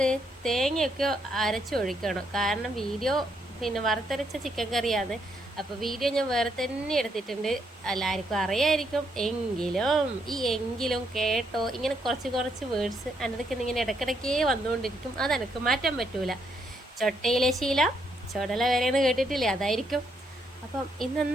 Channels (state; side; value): normal; both; correlation 0.75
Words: തേങ്ങയൊക്കെ അരച്ചൊഴിക്കണം. കാരണം വീഡിയോ പിന്നെ വറുത്തരച്ച ചിക്കൻ കറിയാണ്. അപ്പോൾ വീഡിയോ ഞാൻ വേറെ തന്നെ എടുത്തിട്ടുണ്ട്. എല്ലാവർക്കും അറിയായിരിക്കും. എങ്കിലും കേട്ടോ, ഇങ്ങനെ കുറച്ച് വേർഡ്സ് എൻ്റെ ഇങ്ങനെ ഇടയ്ക്കിടയ്ക്കേ വന്നുകൊണ്ടിരിക്കും. അതെനിക്ക് മാറ്റാൻ പറ്റൂല. ചൊട്ടയിലെ ശീല ചുടല വരെയെന്ന് കേട്ടിട്ടില്ലേ, അതായിരിക്കും. അപ്പം